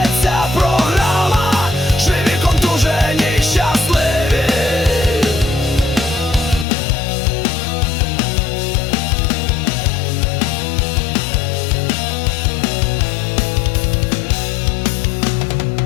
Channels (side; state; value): right; drops out; at 6.7 s